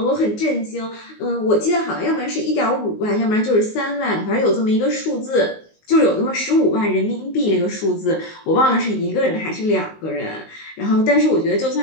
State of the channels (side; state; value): right; late; 19 ms